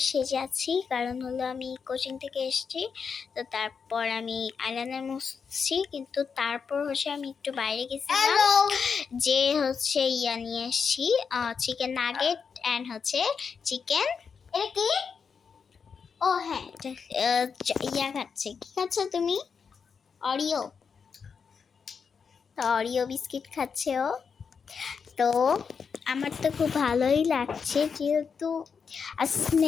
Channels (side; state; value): right; quieter; 6.0 dB